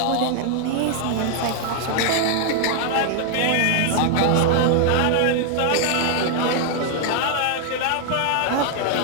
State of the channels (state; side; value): different; both; correlation 0.00